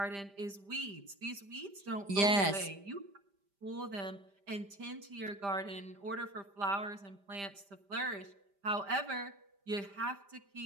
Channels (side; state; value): left; late; 5.0 ms